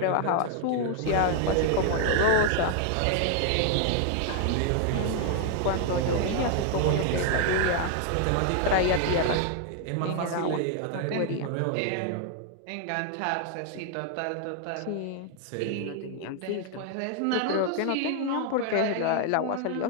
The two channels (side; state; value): both; different; correlation 0.00